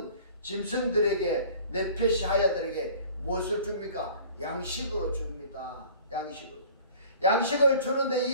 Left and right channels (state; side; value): inverted; both; correlation -0.48